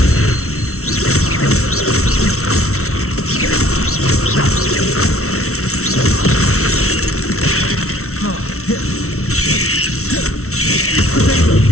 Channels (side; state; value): right; late; 0.63 ms